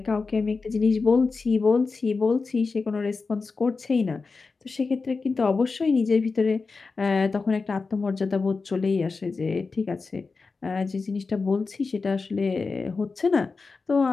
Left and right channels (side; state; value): right; quieter; 4.3 dB